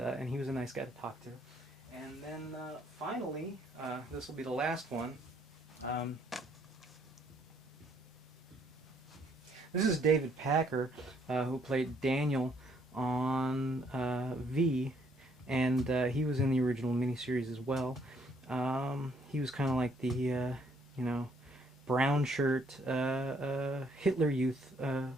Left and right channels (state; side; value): normal; both; correlation 0.67